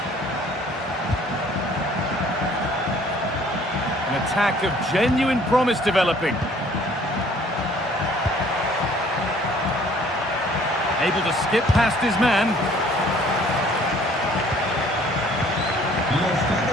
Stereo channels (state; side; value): normal; both; correlation 0.56